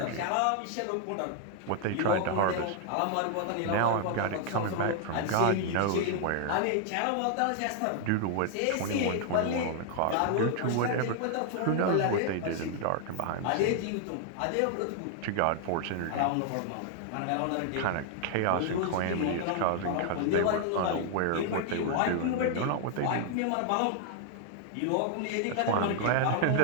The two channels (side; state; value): both; different; correlation 0.00